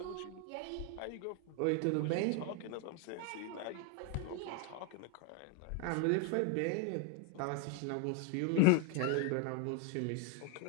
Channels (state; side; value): different; both; correlation 0.01